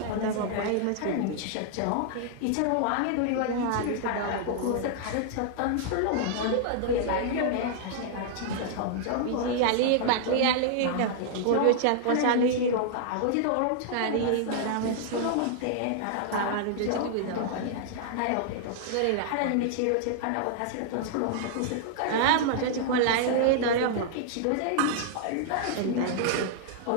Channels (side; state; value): both; different; correlation -0.01